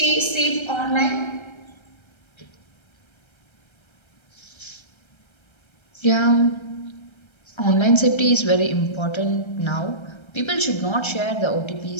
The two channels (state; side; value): late; right; 1.3 ms